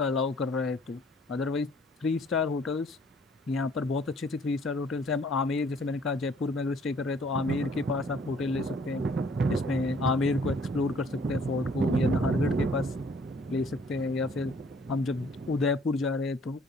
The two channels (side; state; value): both; normal; correlation 0.58